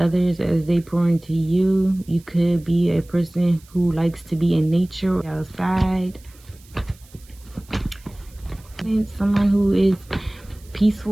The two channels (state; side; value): noise; right; hiss, 27 dB below the sound